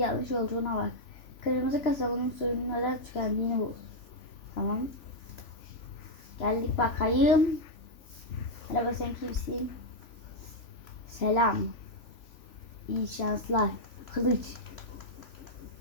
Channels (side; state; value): right; late; 3.5 ms